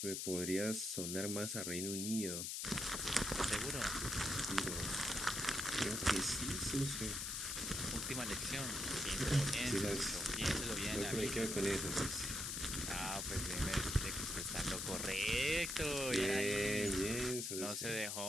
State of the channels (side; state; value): left; noise; hiss, 2 dB below the sound